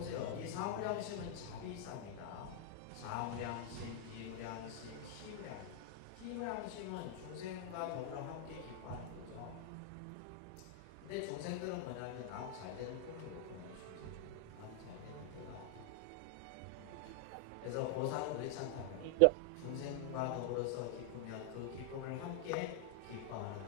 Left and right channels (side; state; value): both; different; correlation 0.00